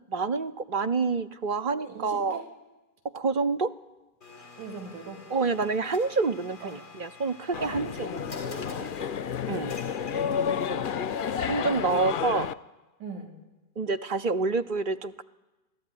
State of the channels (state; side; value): late; left; 2.4 ms